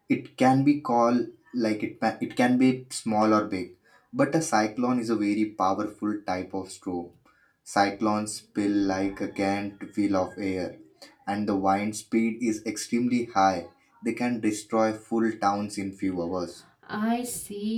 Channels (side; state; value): both; identical; correlation 1.00